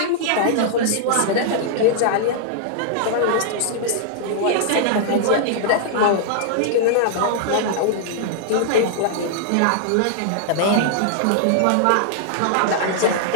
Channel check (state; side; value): different; both; correlation -0.01